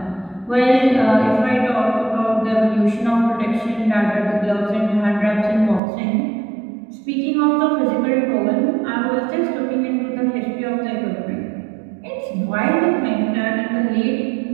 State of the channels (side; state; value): left; drops out; at 5.8 s